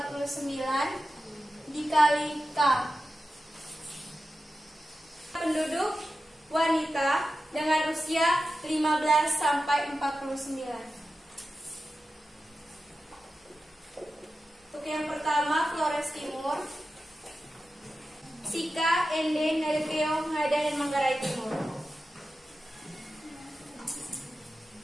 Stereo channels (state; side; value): normal; both; correlation 0.92